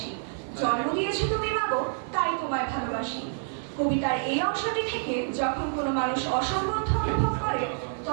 জন্ম দিয়েছো তুমি মাগো, তাই তোমায় ভালোবাসি। কবিতার এই অংশটি থেকে যখন কোনো মানুষ অসংবদ্ধ অনুভব করে,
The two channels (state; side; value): silent; left; 59 dB below the other